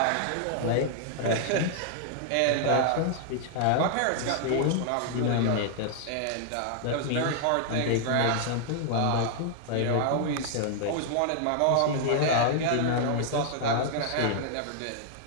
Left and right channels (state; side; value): different; both; correlation 0.00